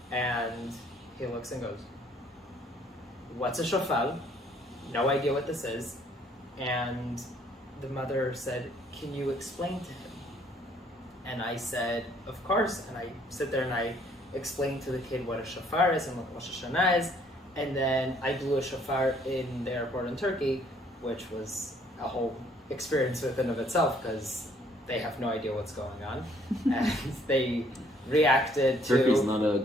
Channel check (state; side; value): normal; both; correlation 0.63